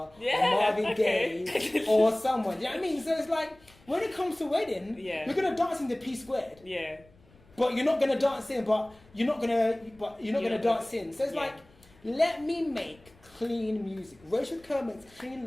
Marvin Gaye, or someone. You know what I mean? So it's like, when it comes to wedding, you're going to dance in the P squared. Yeah. But you're not going to dance in, but you're not going to dance in. So it's like, let me make clean music. Rachel Kerr makes clean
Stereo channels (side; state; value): left; noise; rumble, 28 dB below the sound